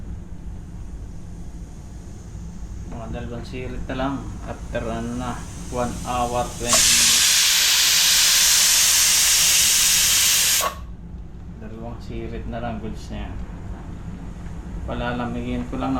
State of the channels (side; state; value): both; identical; correlation 1.00